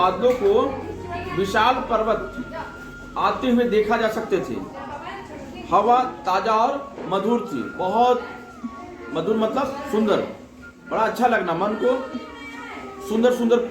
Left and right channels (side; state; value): both; identical; correlation 1.00